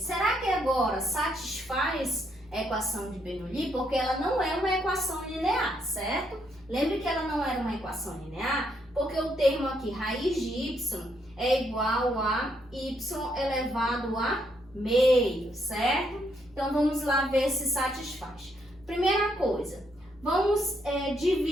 que agora satisfaz a equação de Bernoulli? Porque ela não é uma equação linear, certo? Lembre que ela não era uma equação linear, porque o termo aqui, raiz de y, é igual a y elevado a meio, certo? Então, vamos lá ver se satisfaz. Primeira coisa, vamos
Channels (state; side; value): normal; both; correlation 0.75